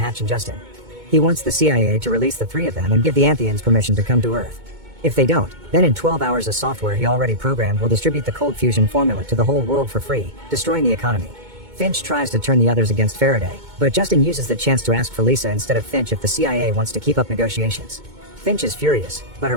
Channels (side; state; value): left; late; 2.2 ms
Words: and Justin. He wants the CIA to release the 3 of them and give the Antheans permission to come to Earth. If they don't, then in 12 hours a software he already programmed will distribute the cold fusion formula to the whole world for free, destroying the economy. Finch tries to turn the others against Faraday, but Justin uses the chance to ask for Lisa instead of Finch if the CIA wants to keep up negotiations. Finch is furious, but her